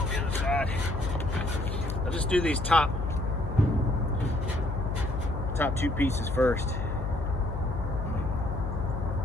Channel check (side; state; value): left; noise; hum, 3 dB below the sound